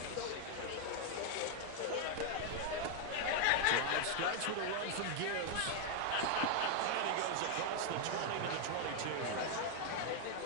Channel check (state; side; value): different; both; correlation 0.00